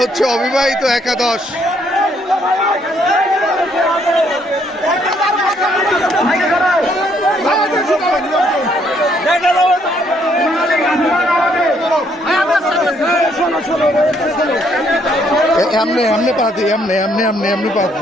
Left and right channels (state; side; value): normal; both; correlation 0.69